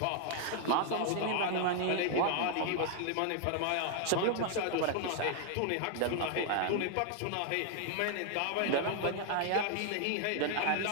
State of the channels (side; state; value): both; different; correlation 0.00